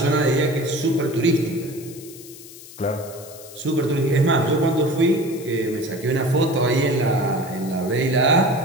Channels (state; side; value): noise; left; hiss, 17 dB below the sound